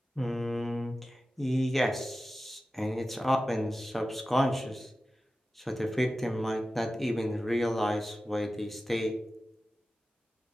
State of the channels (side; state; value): both; normal; correlation 0.94